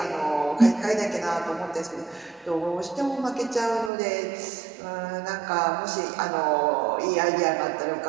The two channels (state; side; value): drops out; left; at 3.9 s